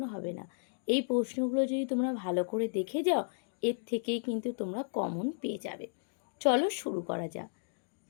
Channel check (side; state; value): right; silent; digital silence